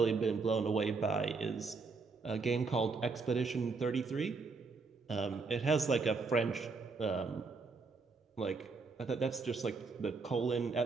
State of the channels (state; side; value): quieter; left; 4.4 dB